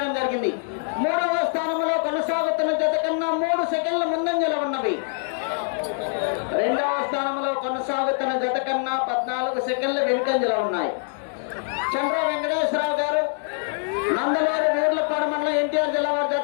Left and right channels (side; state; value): right; silent; digital silence